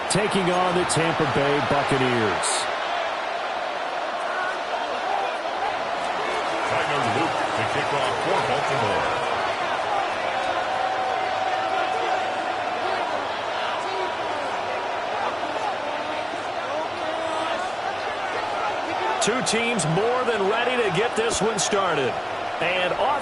taking on the Tampa Bay Buccaneers. Tyler Luke to kick off for Baltimore. Two teams more than ready to get this one started. And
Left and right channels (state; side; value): identical; both; correlation 1.00